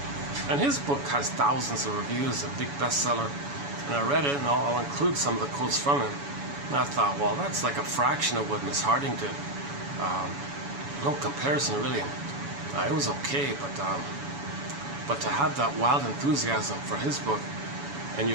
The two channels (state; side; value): late; left; 7.1 ms